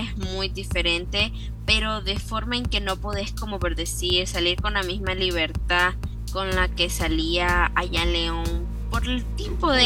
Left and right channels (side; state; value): both; identical; correlation 1.00